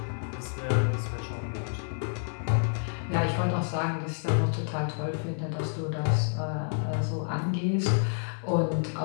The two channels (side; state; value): right; silent; 58 dB below the other